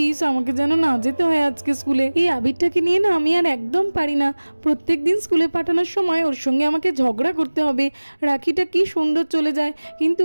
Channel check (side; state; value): both; inverted; correlation -1.00